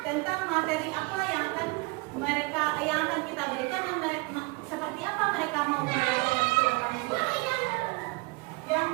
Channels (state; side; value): quieter; left; 27.2 dB